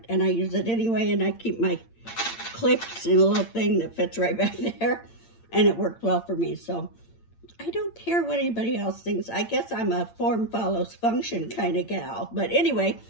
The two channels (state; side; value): late; right; 8.8 ms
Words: and I use it anyway, and I keep my clips in a little thing that fits right back there, and it worked well for me. So I don't care what anybody else thinks. I guess I'm a form follows function kind of gal. But anyway,